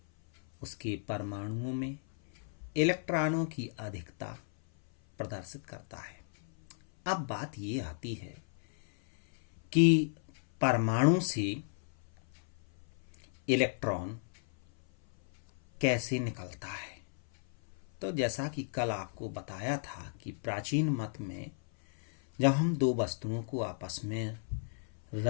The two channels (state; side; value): silent; right; 55 dB below the other